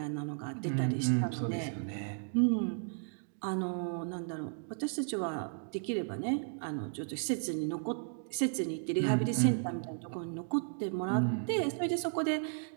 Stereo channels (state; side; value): silent; left; digital silence